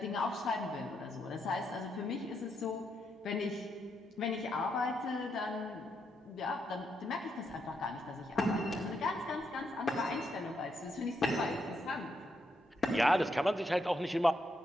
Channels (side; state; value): both; normal; correlation 0.80